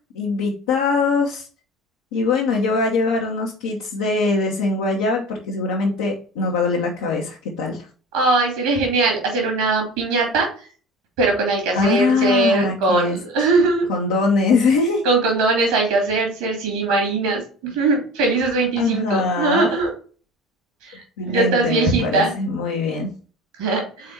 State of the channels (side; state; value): both; normal; correlation 0.36